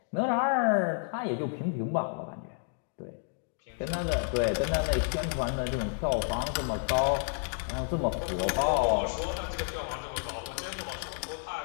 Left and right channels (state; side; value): silent; right; 57 dB below the other